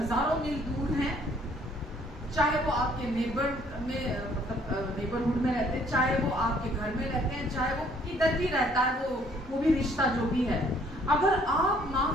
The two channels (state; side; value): normal; both; correlation 0.62